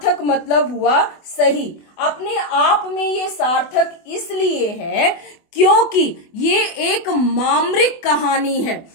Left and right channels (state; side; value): late; right; 24 ms